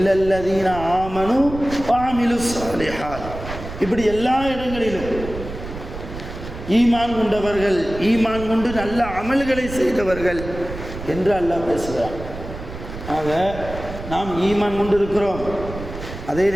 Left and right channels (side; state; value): right; noise; rumble, 10 dB below the sound